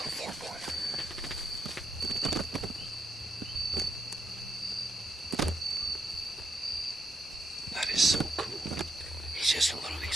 4-pointer. That is so cool. He's just a little,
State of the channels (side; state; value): both; normal; correlation 0.79